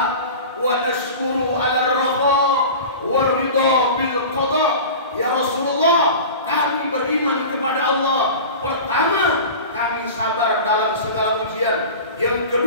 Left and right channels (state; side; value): inverted; both; correlation -0.35